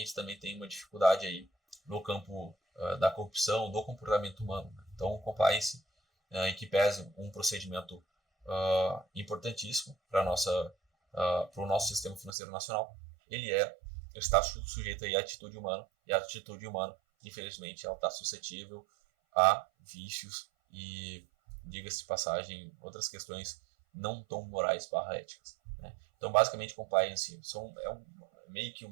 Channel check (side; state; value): left; drops out; at 12.3 s